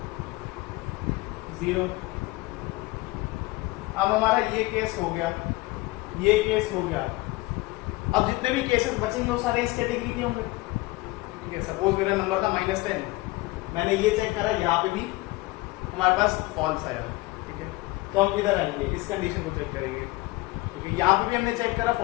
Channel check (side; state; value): right; quieter; 21.1 dB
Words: 0। अब हमारा ये केस हो गया, ये केस हो गया। अब जितने भी केसेस बचेंगे वो सारे इस कैटेगरी के होंगे। ठीक है, सपोज मेरा नंबर था -10, मैंने ये चेक करा, यहाँ पे भी हमारे पास फॉल्स आया। ठीक है, तो हम इधर आएंगे, इस कंडीशन को चेक करेंगे, क्योंकि यहाँ पे भी हमने चेक करा